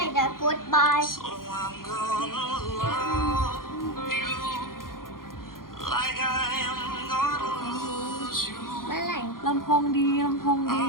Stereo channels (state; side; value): late; right; 0.91 ms